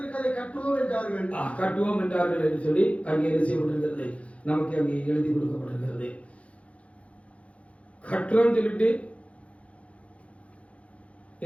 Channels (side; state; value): right; late; 0.063 ms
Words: அதை கட்டுவோம் என்றார்கள். கட்டுவோம் என்றார்கள் என்று சொல்லி அங்கே என்ன செய்யப்பட்டிருக்கிறது, நமக்கு அங்கே எழுதி கொடுக்கப்பட்டிருக்கிறது. கட்டுறோம் சொல்லிட்டு